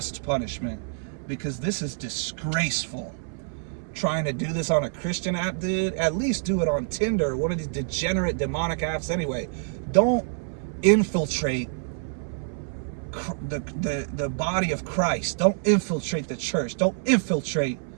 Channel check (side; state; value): left; silent; 60 dB below the other